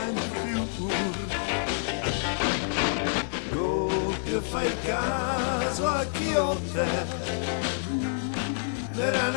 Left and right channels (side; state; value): right; silent; digital silence